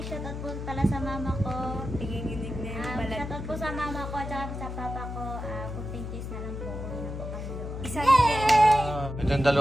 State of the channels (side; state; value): left; noise; hum, 7 dB below the sound